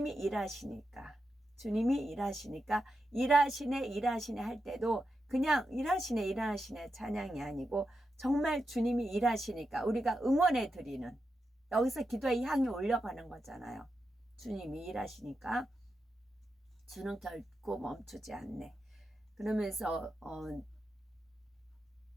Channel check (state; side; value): normal; both; correlation 0.87